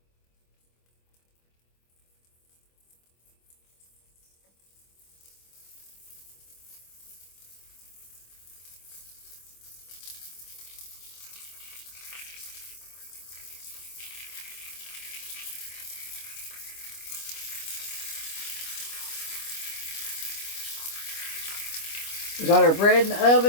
We got our bread in the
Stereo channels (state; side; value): late; right; 25 ms